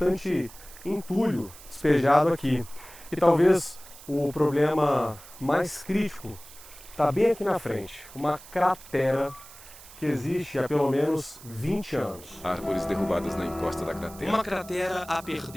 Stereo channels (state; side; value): noise; right; hiss, 19 dB below the sound